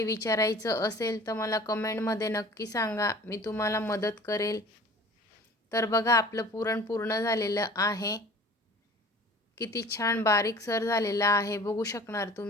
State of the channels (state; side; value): normal; both; correlation 0.45